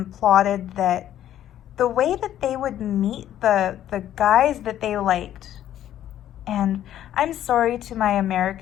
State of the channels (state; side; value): quieter; right; 11.7 dB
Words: plotted that the way that they would meet the guys that they liked, and I'm sorry to my